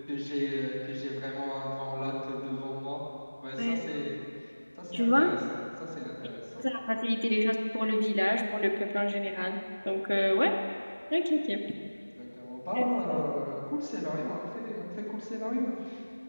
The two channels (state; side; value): inverted; both; correlation -1.00